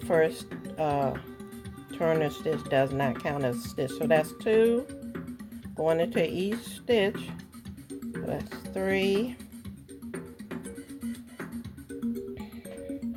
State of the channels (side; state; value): both; identical; correlation 1.00